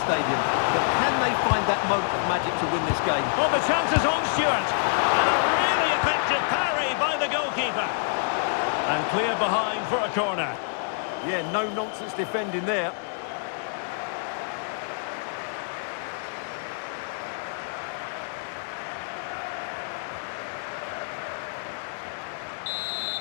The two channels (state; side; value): silent; right; digital silence